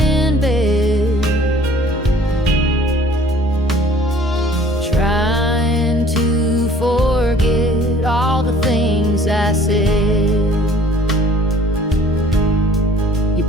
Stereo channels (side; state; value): both; normal; correlation 0.53